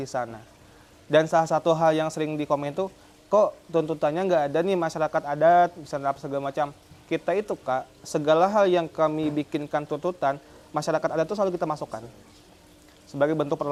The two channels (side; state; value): both; identical; correlation 1.00